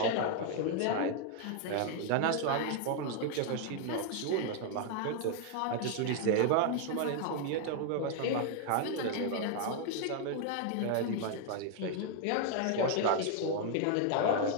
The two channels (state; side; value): different; both; correlation 0.00